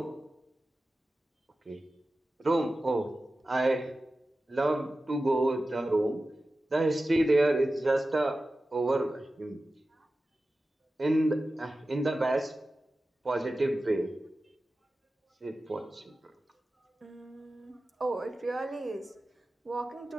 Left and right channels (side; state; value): both; normal; correlation 0.94